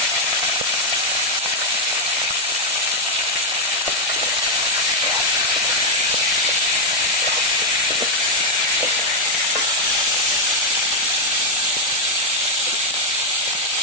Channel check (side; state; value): both; normal; correlation 0.02